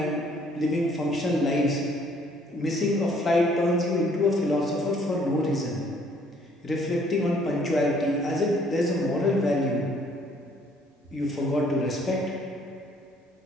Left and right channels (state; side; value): normal; both; correlation 0.62